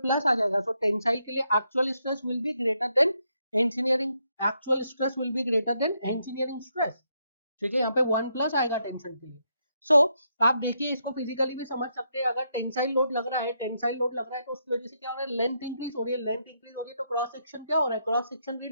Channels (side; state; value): both; inverted; correlation -0.78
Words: आ जाएगा. सो टेंसाइल के लिए actual stress will be greater than engineering, actual stress will be greater than engineering stress. ठीक है, यहाँ पे 1 प्लस आएगा टेंशन के लिए. सो आप देखिए इसको फिजिकली भी समझ सकते हैं. अगर टेंसाइल लोड लग रहा है, टेंसाइल लोड लग रहा है तो उसकी वजह से क्या हो रहा है? लेंथ इंक्रीज हो रही है. लेंथ इंक्रीज हो रही है तो क्रॉस सेक्शन क्या हो रहा है? क्रॉस सेक्शन